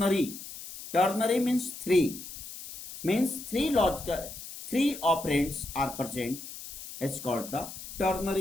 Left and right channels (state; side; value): noise; left; hiss, 12 dB below the sound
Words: Ternary means three. Means three operands are present. It's called the